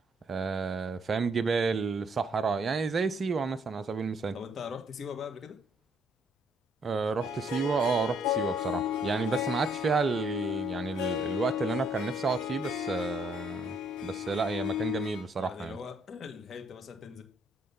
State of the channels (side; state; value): both; normal; correlation 0.68